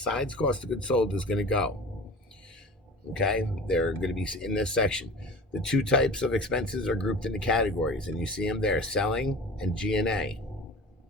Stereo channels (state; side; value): normal; both; correlation 0.37